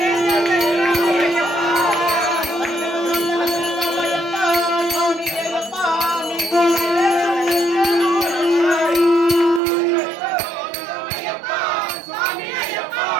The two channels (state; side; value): drops out; left; at 9.6 s